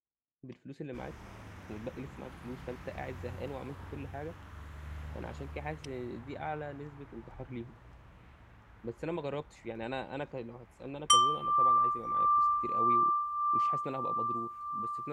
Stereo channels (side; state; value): both; identical; correlation 1.00